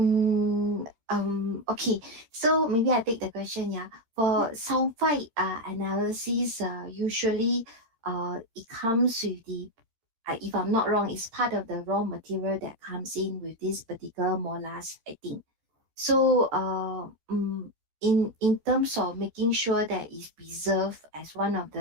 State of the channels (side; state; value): left; late; 13 ms